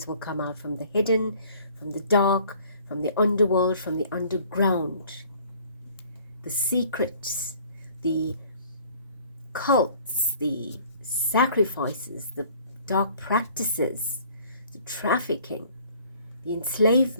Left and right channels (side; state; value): both; inverted; correlation -0.54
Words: will come out from the hidden, from the dark, from the underworld, from the underground. The secrets, the cults, the sacrifices, the dark practices, the trafficking, the